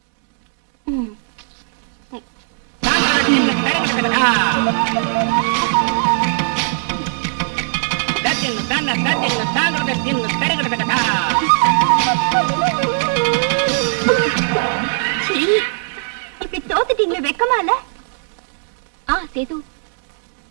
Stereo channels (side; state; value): left; silent; digital silence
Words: இப்படி தோத்துட்டீங்களே, வெக்கமா இல்ல? சேது,